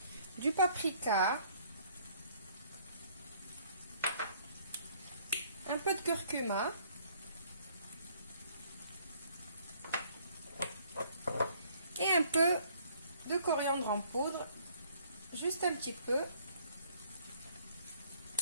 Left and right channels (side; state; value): both; inverted; correlation -0.61